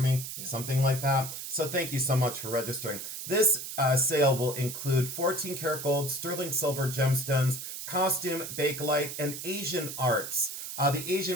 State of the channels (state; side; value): noise; right; hiss, 8 dB below the sound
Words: something like that. So thank you so much for registering. This sale will include 14 karat gold, sterling silver gemstones, costume, bakelite, and Asian arts. The